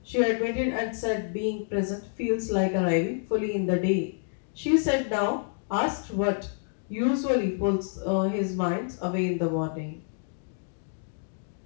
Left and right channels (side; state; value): right; silent; digital silence